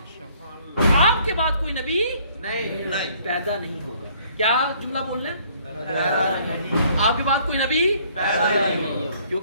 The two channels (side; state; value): both; inverted; correlation -0.61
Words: آپ کے بعد کوئی نبی نہیں پیدا نہیں ہوگا. کیا جملہ بولنا ہے؟ آپ کے بعد کوئی نبی پیدا نہیں ہوگا.